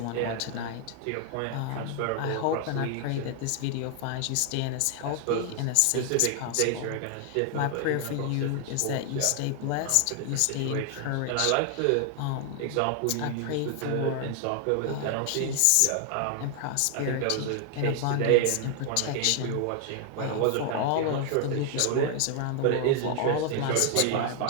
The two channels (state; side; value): different; both; correlation 0.00